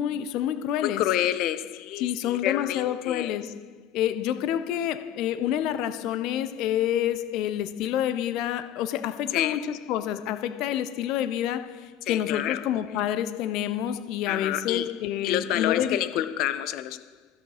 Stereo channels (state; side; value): quieter; right; 11.0 dB